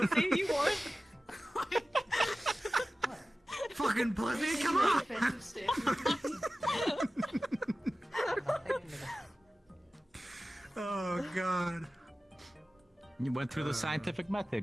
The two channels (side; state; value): both; normal; correlation 0.96